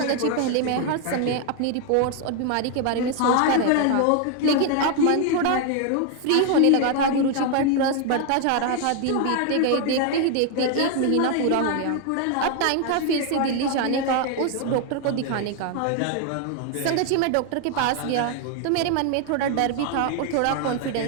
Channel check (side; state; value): both; different; correlation 0.01